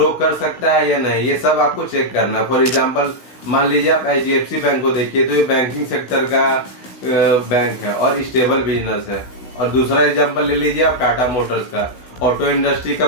कर सकता है या नहीं, ये सब आपको चेक करना। फॉर एग्जांपल मान लीजिए आप HDFC बैंक को देखिए तो ये बैंकिंग सेक्टर का बैंक है और स्टेबल बिजनेस है। और दूसरा एग्जांपल ले लीजिए आप टाटा मोटर्स का, ऑटो इंडस्ट्री का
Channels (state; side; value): late; right; 16 ms